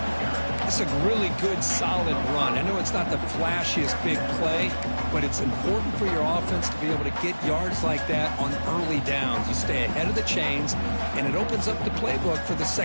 It's a really good, solid run. I know it's not the flashiest big play, but it's important for your offense to be able to get yards like that on early downs. You stay ahead of the chains, and it opens up the playbook for the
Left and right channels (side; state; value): both; inverted; correlation -1.00